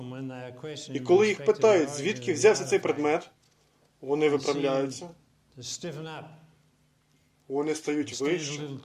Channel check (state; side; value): identical; both; correlation 1.00